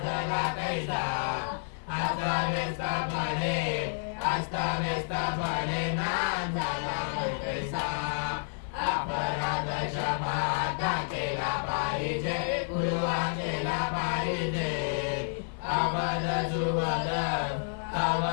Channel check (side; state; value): right; silent; digital silence